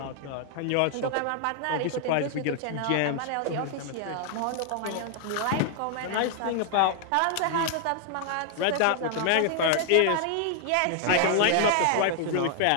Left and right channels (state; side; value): different; both; correlation 0.00